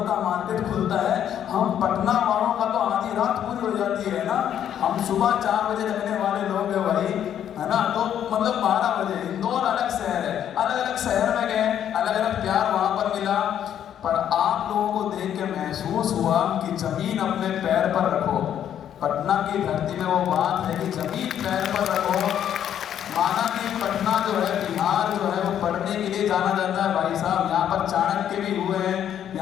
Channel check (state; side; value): quieter; right; 9.9 dB